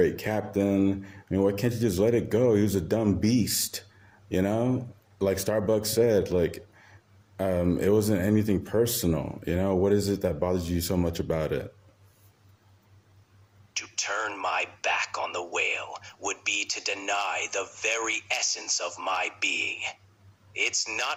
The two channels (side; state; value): both; identical; correlation 1.00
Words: captain. I mean, why can't you just let it go? He was a dumb beast, Like Starbucks said, like, it wasn't anything personal, What is it that bothers you so much about it? To turn my back on the whale would be to deny the very essence of my being. It's